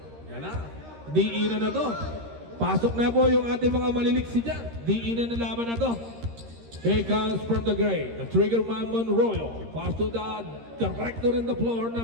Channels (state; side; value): late; left; 13 ms